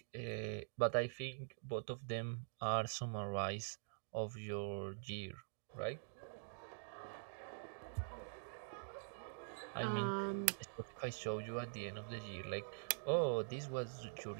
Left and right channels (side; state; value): left; silent; digital silence